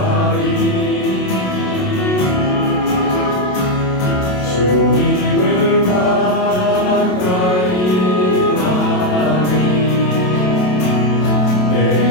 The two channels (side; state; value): right; late; 27 ms